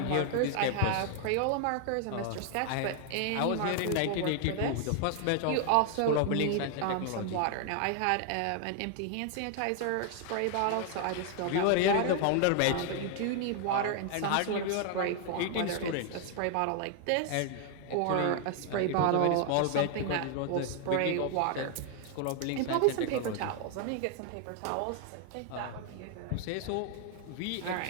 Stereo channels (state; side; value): different; both; correlation 0.00